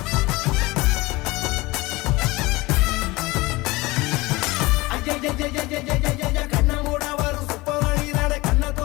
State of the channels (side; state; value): right; quieter; 21.8 dB